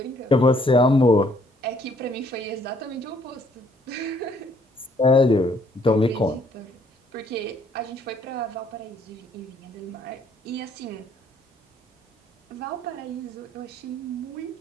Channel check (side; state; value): both; normal; correlation 0.65